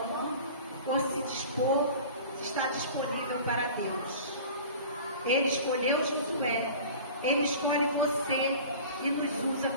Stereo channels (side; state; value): both; inverted; correlation -0.40